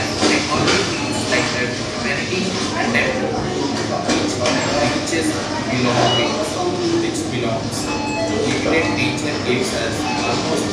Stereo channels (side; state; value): both; identical; correlation 1.00